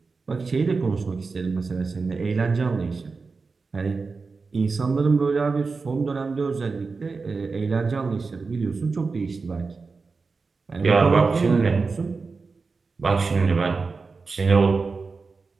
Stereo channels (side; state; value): left; quieter; 4.4 dB